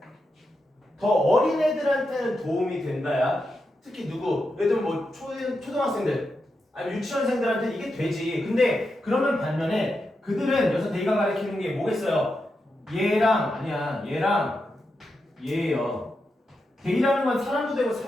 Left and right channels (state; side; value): normal; both; correlation 0.87